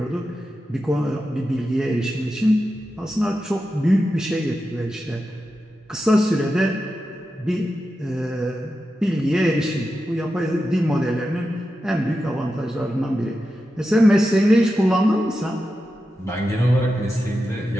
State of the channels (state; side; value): normal; both; correlation 0.90